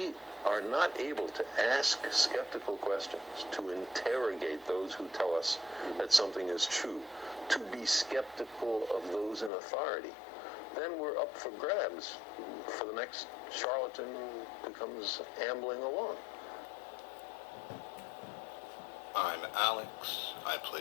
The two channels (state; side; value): drops out; right; at 9.5 s